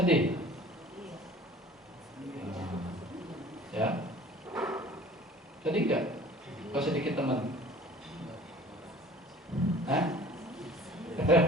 ya. Sedih nggak? Kalau sedikit teman,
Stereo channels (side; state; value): both; normal; correlation 0.47